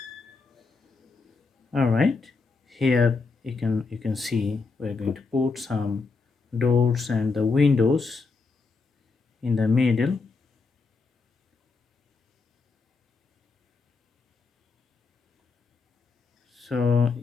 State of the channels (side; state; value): right; quieter; 4.3 dB